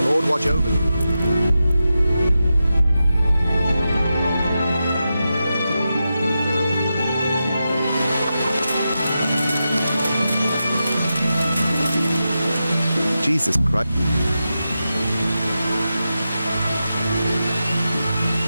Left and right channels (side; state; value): both; inverted; correlation -0.90